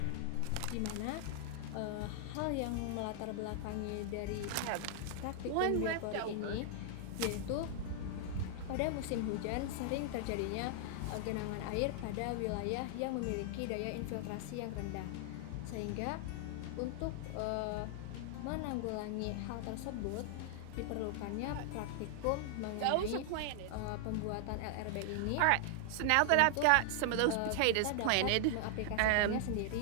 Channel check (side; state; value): both; different; correlation 0.00